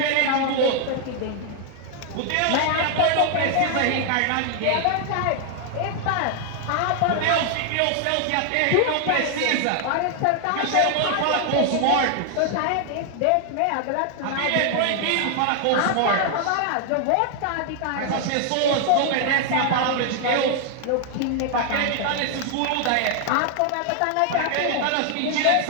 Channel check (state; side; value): different; both; correlation 0.00